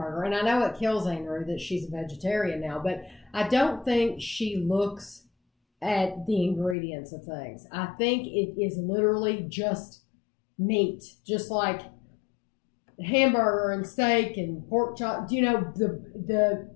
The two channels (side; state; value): right; drops out; at 6.8 s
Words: And I know it kills Andrew that she's a vegetarian now. But I don't think she looks at the ingredients of things. I think it is literally just meat. Just like hamburger and steak and pork chop. You know, the